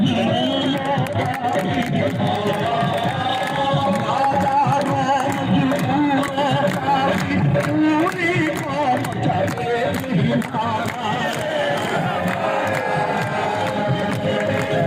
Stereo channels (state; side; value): identical; both; correlation 1.00